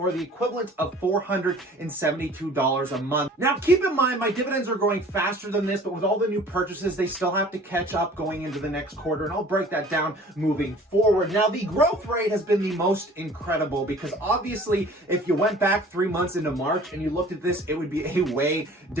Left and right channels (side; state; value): both; normal; correlation 0.48